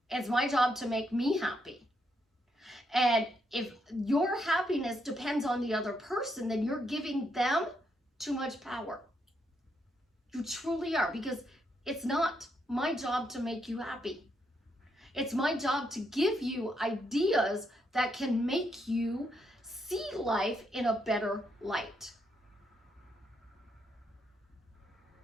It's my job to make me happy. And if your happiness depends on the other person, then you're giving them too much power. You truly are, because it's not my job to make you happy. It's my job to give you ideas that can make you see life in a better light.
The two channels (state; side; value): normal; both; correlation 0.78